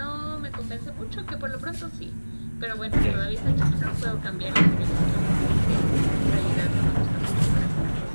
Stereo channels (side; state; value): both; inverted; correlation -1.00